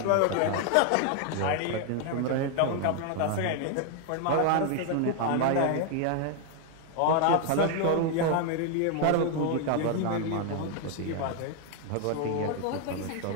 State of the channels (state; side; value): different; both; correlation 0.00